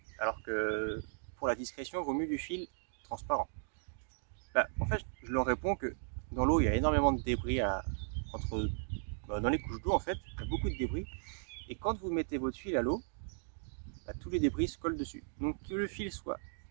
alors que pour la discrétion, il vaut mieux du fil transparent. En fait, je leur réponds que dans l'eau, il y a énormément de débris dans les couches d'eau, en fait, il y a beaucoup de débris. Et quand vous mettez votre fil à l'eau, tous les débris se collent dessus. Donc que le fil soit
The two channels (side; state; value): left; silent; digital silence